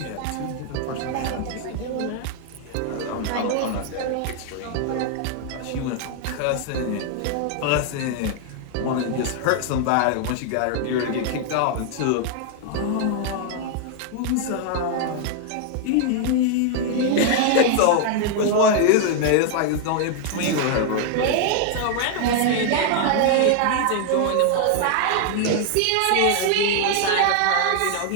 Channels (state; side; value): different; both; correlation 0.00